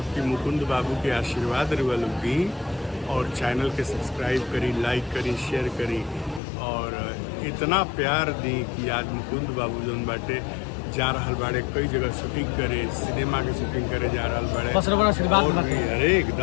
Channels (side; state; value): right; drops out; at 6.4 s